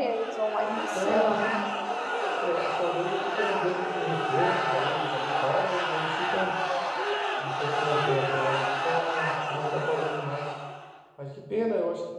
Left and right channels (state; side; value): identical; both; correlation 1.00